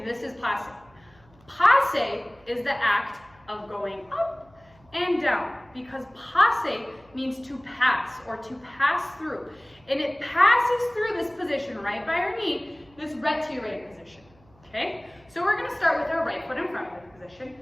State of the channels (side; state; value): right; noise; hum, 29 dB below the sound